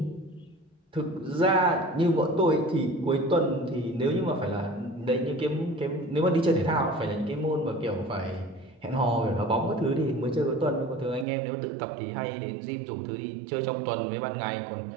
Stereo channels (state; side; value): drops out; left; at 11.2 s